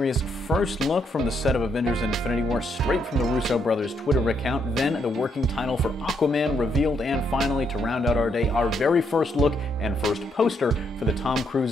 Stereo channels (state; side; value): normal; both; correlation 0.76